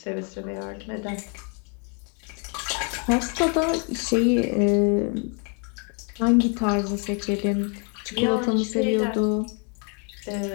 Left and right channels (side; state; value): right; quieter; 38.4 dB